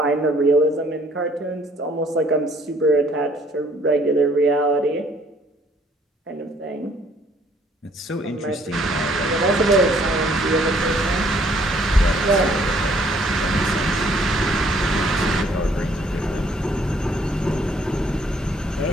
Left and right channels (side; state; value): both; normal; correlation 0.62